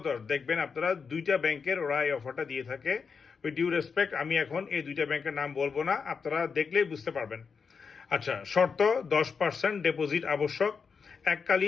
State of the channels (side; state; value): right; quieter; 5.6 dB